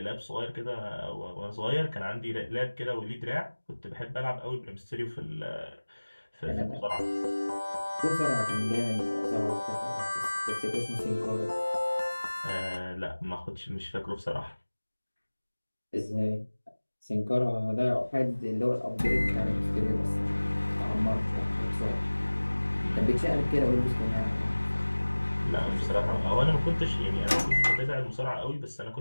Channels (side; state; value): both; inverted; correlation -1.00